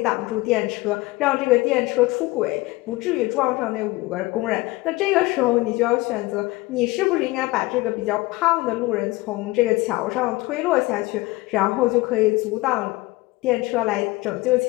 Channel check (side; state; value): right; quieter; 20.7 dB